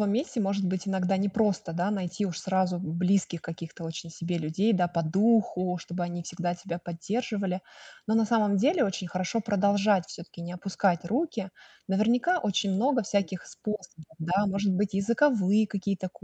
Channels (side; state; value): both; identical; correlation 1.00